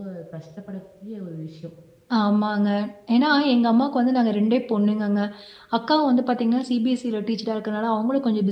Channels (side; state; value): both; identical; correlation 1.00